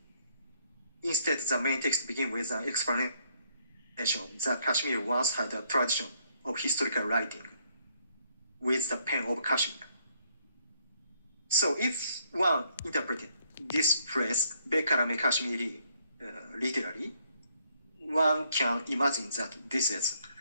Instead, the main text begins with an explanation that Kashmir once had a tradition of historical writing with the pen of Kashmir. So if one interpreted this phrase, Bekarame Kashmiri, literally, one can imagine that this is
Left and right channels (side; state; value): both; inverted; correlation -0.70